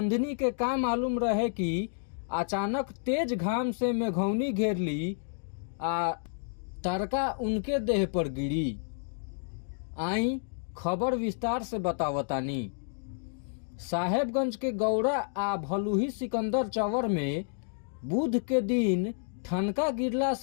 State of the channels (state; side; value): silent; right; digital silence